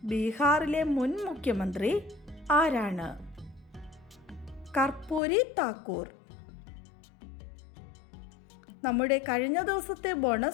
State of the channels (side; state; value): right; drops out; at 5.2 s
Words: ബീഹാറിലെ മുൻ മുഖ്യമന്ത്രി ആരാണ്? കർപ്പൂരി താക്കൂർ. നമ്മുടെ കഴിഞ്ഞ ദിവസത്തെ